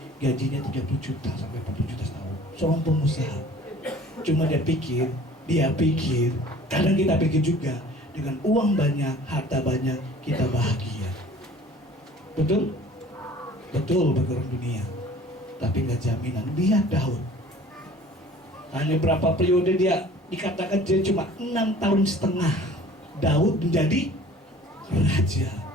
gajinya 30 juta sampai 40 juta setahun. Seorang pengusaha. Cuma dia pikir, kadang kita pikir juga, dengan uang banyak, harta banyak, kita bahagia. Betul? Betul bagi orang dunia. Tapi nggak jaminan. Lihat Daud. Hanya berapa periode dia, dikatakan dia cuma 6,5 tahun Daud menjadi raja.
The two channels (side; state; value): both; normal; correlation 0.48